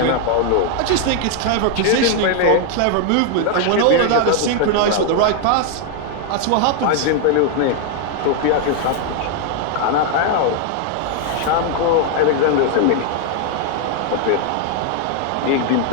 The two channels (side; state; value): both; different; correlation 0.00